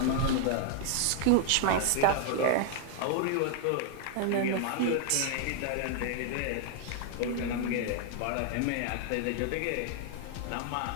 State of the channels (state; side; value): different; both; correlation 0.00